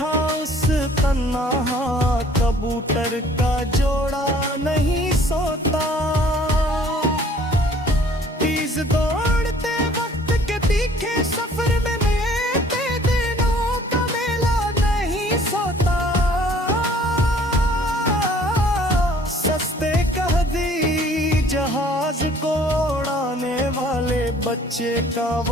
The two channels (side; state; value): both; normal; correlation 0.55